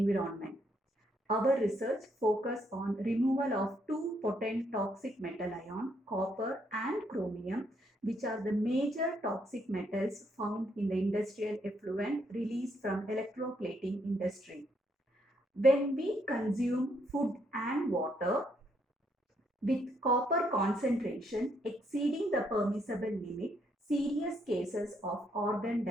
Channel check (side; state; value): both; normal; correlation 0.73